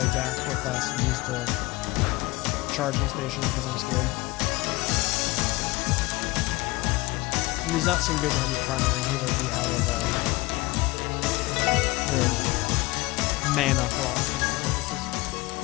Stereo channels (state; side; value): quieter; right; 21.8 dB